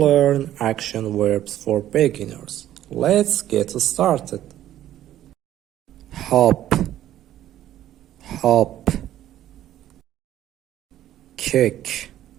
action verbs for beginners. Let's get started. Hop, hop. Kick,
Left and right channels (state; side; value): quieter; left; 12.5 dB